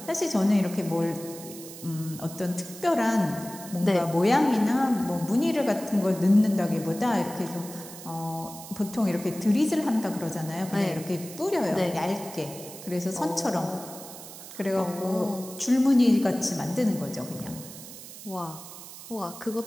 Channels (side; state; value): right; noise; hiss, 14 dB below the sound